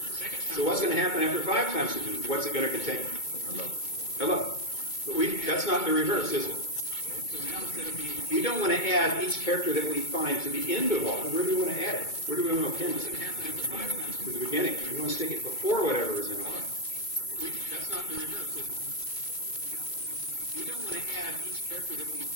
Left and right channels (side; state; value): right; late; 2.2 ms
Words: So what's going to happen after 5 times through the loop? What's it going to contain? Hello. But that's not the reverse, is it? We don't want to add each character that we find to the end of R. Where do we want to add it? Where do we want to append it? To the beginning. We want to stick it before whatever is in R. That's not the reverse, is it? We don't want to add each character that we